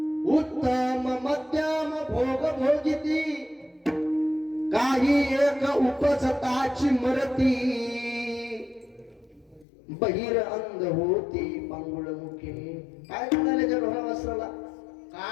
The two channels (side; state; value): right; drops out; at 9.7 s